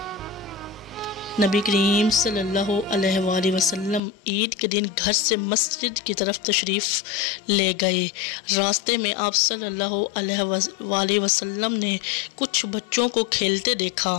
नबी करीम सल्लल्लाहु अलैहि वसल्लम ईद के दिन घर से मस्जिद की तरफ तशरीफ़ ले गए। रास्ते में आप सल्लल्लाहु अलैहि वसल्लम ने कुछ बच्चों को खेलते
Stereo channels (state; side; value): drops out; right; at 4.0 s